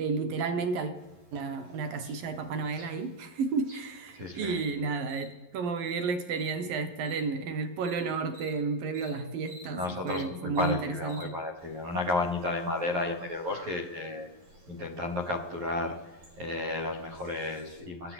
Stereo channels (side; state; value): left; late; 11 ms